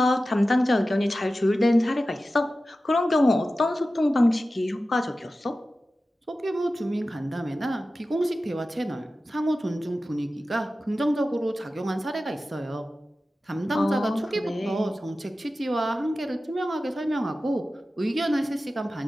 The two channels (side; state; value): both; normal; correlation 0.94